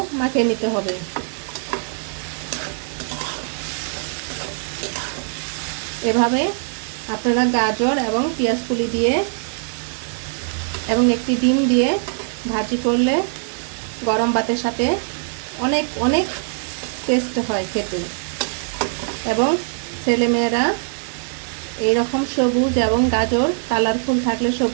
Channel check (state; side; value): silent; left; digital silence